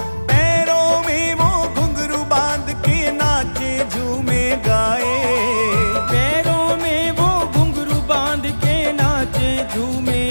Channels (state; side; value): inverted; both; correlation -1.00